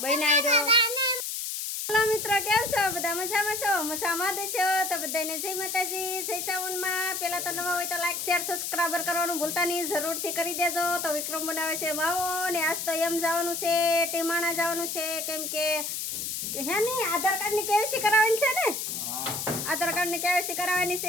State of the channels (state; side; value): noise; left; hiss, 4 dB below the sound